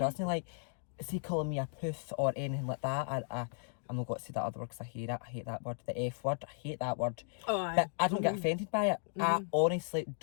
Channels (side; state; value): right; silent; digital silence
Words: Like, see, calling me a poof or anything like that, I'm not going to say that other word because I hate it. I hate that word, the F word. I hate that word. Oh, aye. But I don't get offended by it. I honestly